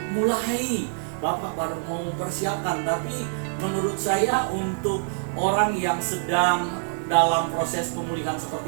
mulai, Bapak baru mau mempersiapkan, tapi menurut saya untuk orang yang sedang dalam proses pemulihan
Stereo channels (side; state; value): left; silent; digital silence